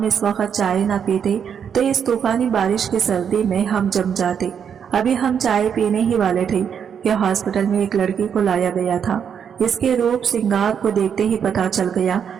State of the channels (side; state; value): left; quieter; 7.7 dB